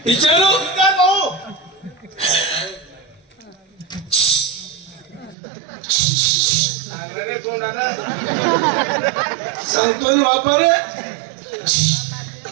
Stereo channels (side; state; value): left; drops out; at 5.4 s